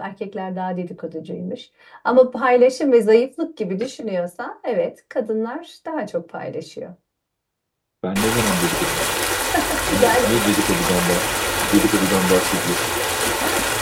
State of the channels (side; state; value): both; identical; correlation 1.00